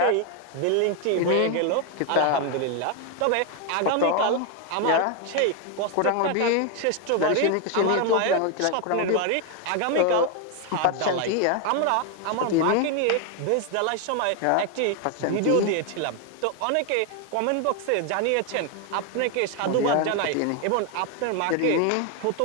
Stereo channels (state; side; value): different; both; correlation 0.01